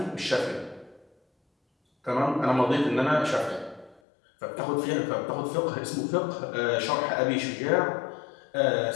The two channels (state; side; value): drops out; right; at 4.0 s